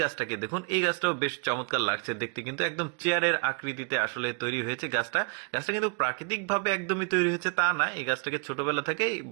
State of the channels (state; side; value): quieter; left; 35.4 dB